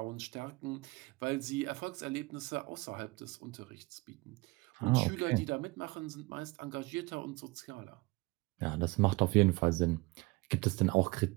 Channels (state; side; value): quieter; left; 23.8 dB